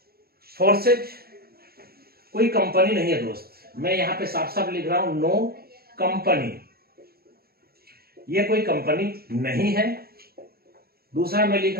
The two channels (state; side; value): late; left; 0.45 ms